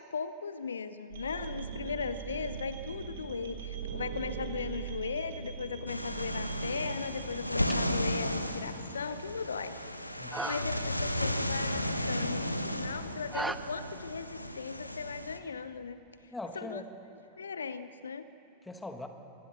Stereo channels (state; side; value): inverted; both; correlation -0.68